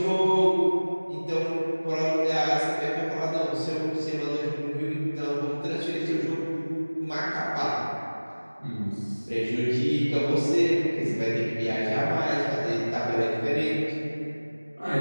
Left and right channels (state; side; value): inverted; both; correlation -1.00